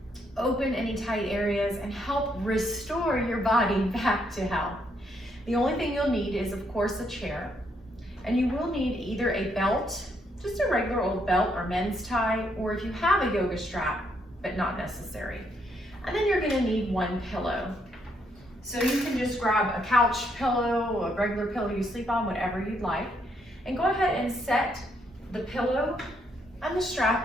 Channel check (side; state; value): both; normal; correlation 0.74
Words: open any tight areas, and help restore your body back to health. The only thing you'll need is, of course, a chair. And you will need either a belt, just a regular old belt or men's tie, or if you have a yoga strap, but not necessary. And then you're gonna need one pillow. So you can just grab a couch pillow, a regular pillow you sleep on, whatever you'd like, and go ahead and set the pillow and the